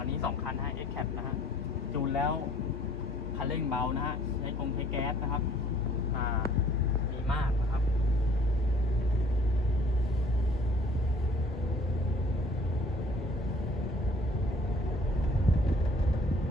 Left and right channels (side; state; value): both; normal; correlation 0.55